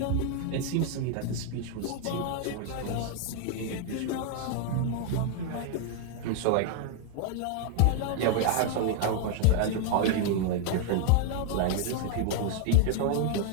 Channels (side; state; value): both; different; correlation 0.00